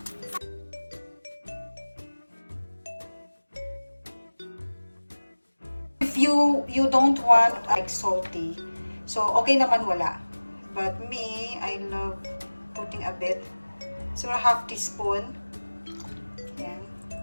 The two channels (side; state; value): both; inverted; correlation -1.00